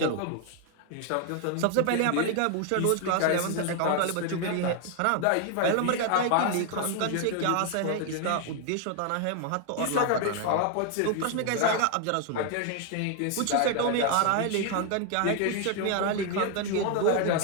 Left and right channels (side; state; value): both; different; correlation 0.00